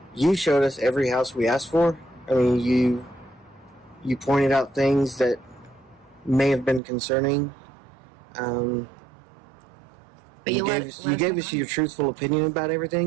you showed us every house we asked for. I mean, you pointed out things that may have been concerning. But you gave us your truthful opinion about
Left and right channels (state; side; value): drops out; left; at 6.8 s